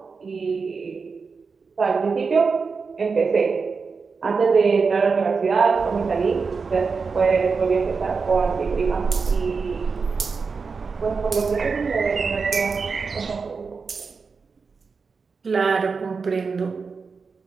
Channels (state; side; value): quieter; left; 4.9 dB